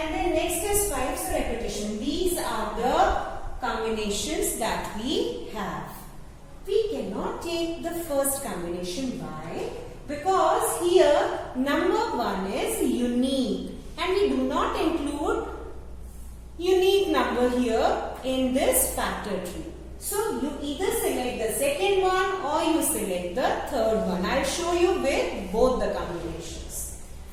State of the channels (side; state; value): both; identical; correlation 1.00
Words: then next is 5, so repetition. These are the combinations that we have. We cannot take the first combination. Why? Because here number 1 is unique and we do not include unique number here in this factor tree. So you either select the second one or you select the third one. I'll show you with both the combinations.